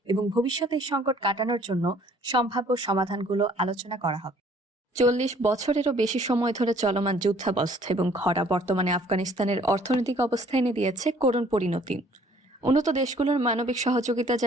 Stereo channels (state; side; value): normal; both; correlation 0.58